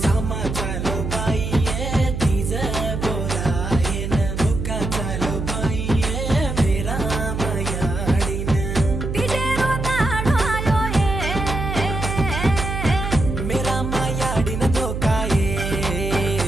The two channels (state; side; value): noise; right; hum, 4 dB below the sound